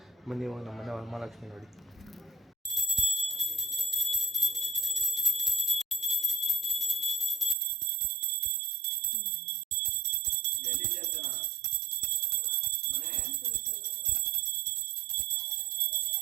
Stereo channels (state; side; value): drops out; left; at 7.6 s